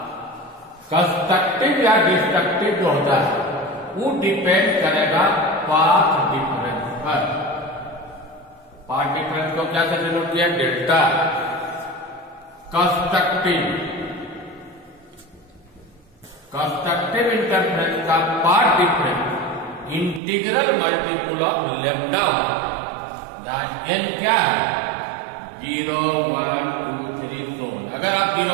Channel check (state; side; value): drops out; left; at 20.2 s